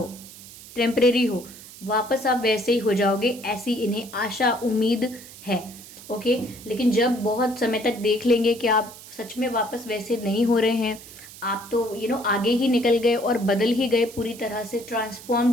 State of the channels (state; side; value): noise; right; hiss, 17 dB below the sound